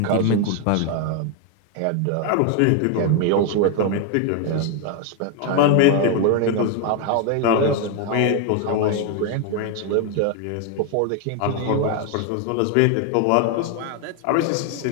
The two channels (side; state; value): both; different; correlation 0.01